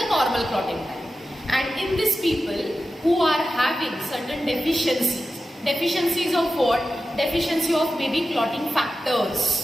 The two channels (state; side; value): normal; both; correlation 0.92